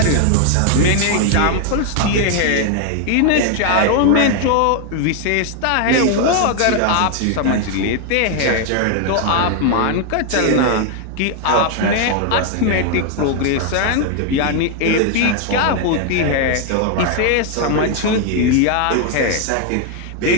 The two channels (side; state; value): both; different; correlation 0.00